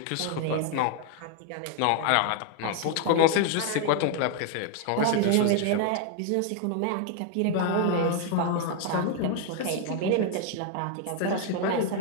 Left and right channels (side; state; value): both; different; correlation 0.00